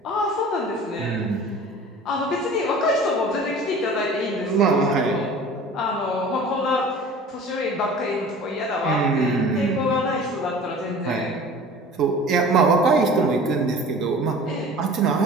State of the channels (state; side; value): normal; both; correlation 0.42